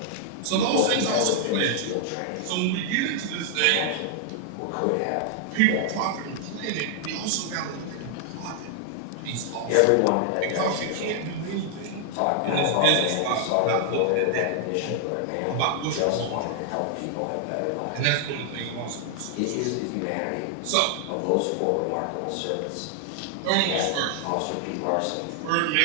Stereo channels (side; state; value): both; different; correlation 0.00